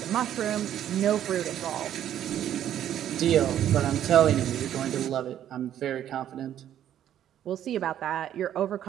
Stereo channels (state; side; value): quieter; left; 10.9 dB